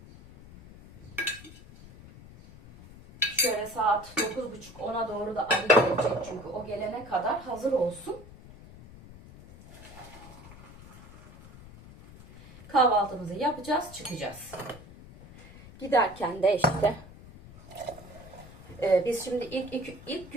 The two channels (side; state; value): left; noise; rumble, 19 dB below the sound